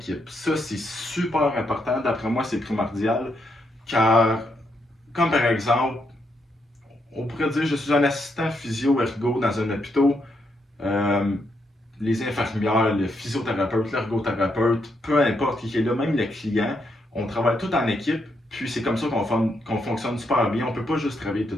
Ça, c'est super important. D'après moi, c'est primordial. Car, comme par exemple, on pourrait dire je suis un assistant physio-ergo dans un hôpital. Euh, les infirmières, le physiothérapeute, l'ergothérapeute, peu importe qui est là, même le client, on travaille tout en équipe. Puis c'est comme ça qu'on fonctionne super bien. On ne peut pas juste travailler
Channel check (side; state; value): both; normal; correlation 0.78